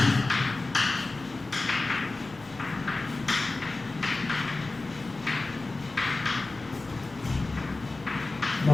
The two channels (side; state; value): right; quieter; 3.3 dB